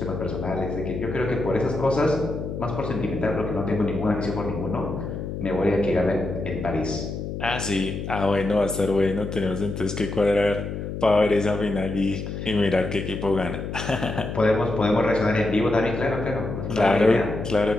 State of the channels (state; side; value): noise; left; hum, 6 dB below the sound